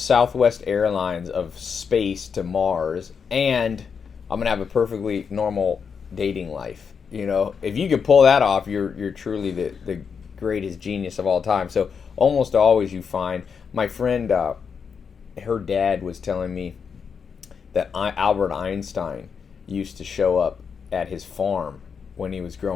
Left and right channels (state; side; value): quieter; right; 6.3 dB